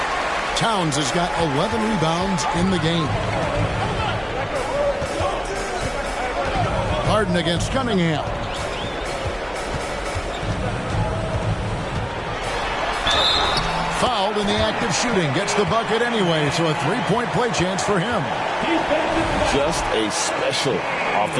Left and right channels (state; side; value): identical; both; correlation 1.00